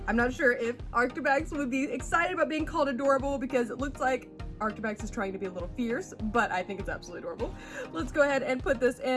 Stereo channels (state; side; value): identical; both; correlation 1.00